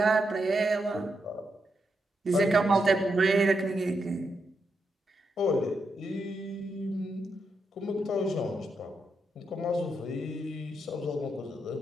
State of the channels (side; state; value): both; normal; correlation 0.83